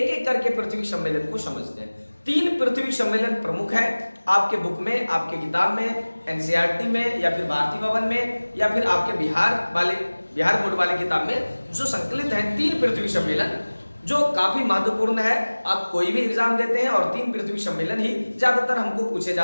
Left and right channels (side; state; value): both; inverted; correlation -1.00